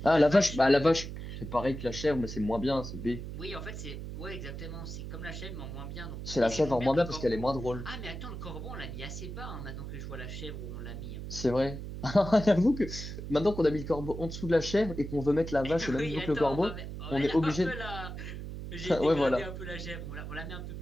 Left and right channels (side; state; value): right; noise; hum, 8 dB below the sound